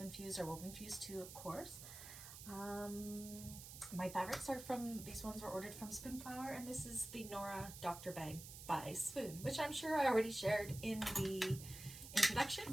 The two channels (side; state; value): right; noise; hiss, 12 dB below the sound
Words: Fuse or Woven Fuse 2, of course. My fabrics are these ones were ordered from Spoonflower, and this is the Nora Doctor Bag by Swoon, which I'm sure I already shared in the